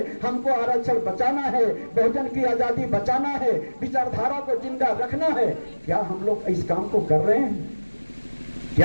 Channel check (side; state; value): both; inverted; correlation -1.00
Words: हमको आरक्षण बचाना है, बहुजन की आजादी बचाना है, विचारधारा को जिंदा रखना है। क्या हम लोग इस काम को कर रहे हैं?